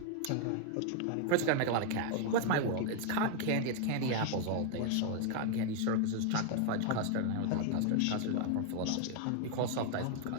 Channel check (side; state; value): both; different; correlation 0.00